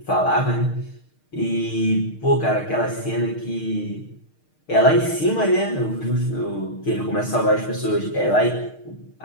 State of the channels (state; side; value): late; right; 6.5 ms